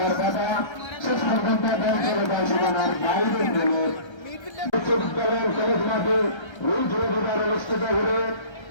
বাবা শেষ পর্যন্ত বল চলে যায় সীমানার বাইরের বলে বিশ্ববিদ্যালয়ের কলেজ মাঠে রুল জুড়ে দেবার অনুষ্ঠিত হলে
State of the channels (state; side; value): late; right; 1.3 ms